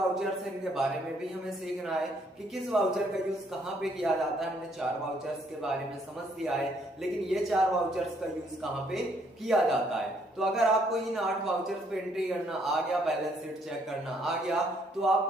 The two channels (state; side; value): normal; both; correlation 0.68